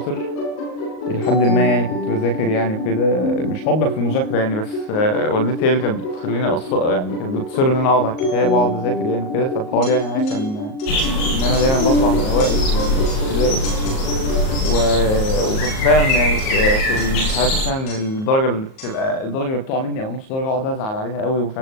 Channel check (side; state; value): right; late; 38 ms